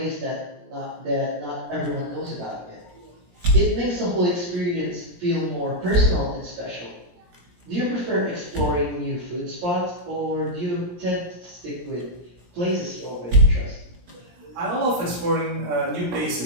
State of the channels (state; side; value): late; left; 17 ms